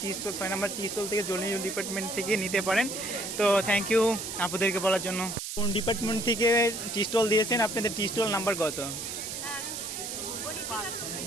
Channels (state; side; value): noise; right; hiss, 6 dB below the sound